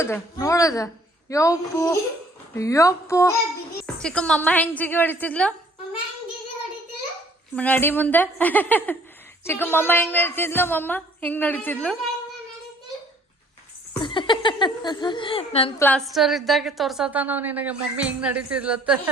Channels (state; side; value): normal; both; correlation 0.58